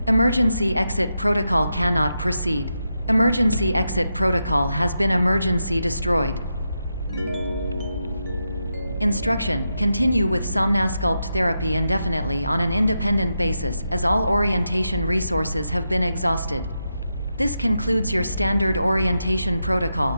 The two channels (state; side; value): inverted; both; correlation -0.86